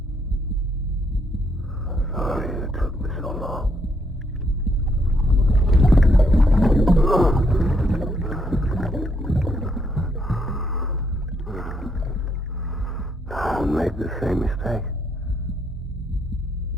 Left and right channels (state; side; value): normal; both; correlation 0.74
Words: I'm sorry it took me so long. Don't make the same mistake.